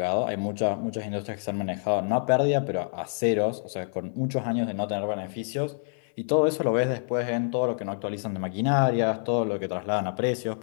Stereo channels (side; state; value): right; silent; digital silence